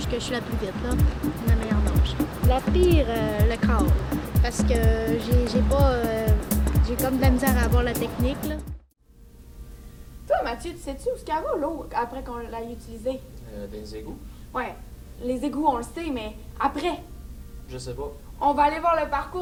que je suis la plus vite, là, la meilleure nage. La pire, le crawl, parce que j'ai comme de la misère à avoir la technique, là. Toi, Mathieu, tu sais-tu où est-ce qu'elle va, l'eau, après qu'on l'ait utilisée? Des égouts? Ouais, les égouts, on le sait, mais après, Je sais pas. on va aller voir le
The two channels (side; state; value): both; identical; correlation 1.00